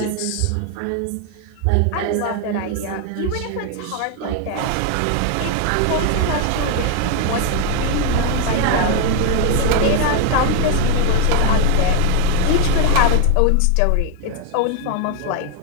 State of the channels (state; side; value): different; both; correlation 0.01